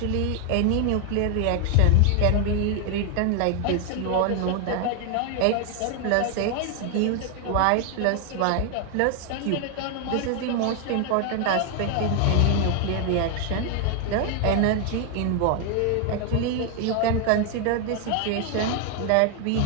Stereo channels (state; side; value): different; both; correlation 0.01